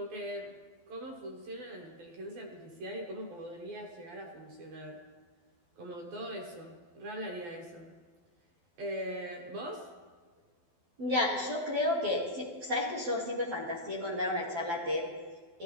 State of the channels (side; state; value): left; late; 12 ms